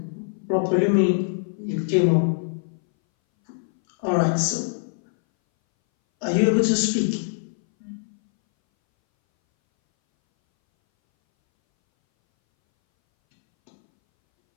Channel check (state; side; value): silent; right; 61 dB below the other